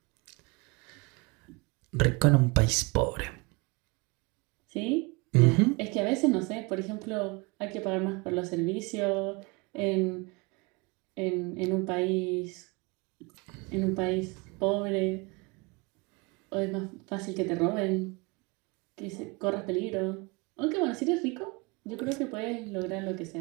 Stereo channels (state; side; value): quieter; left; 27.3 dB